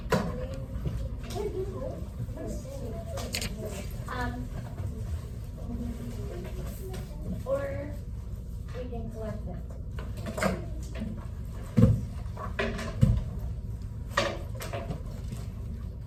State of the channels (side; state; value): both; identical; correlation 1.00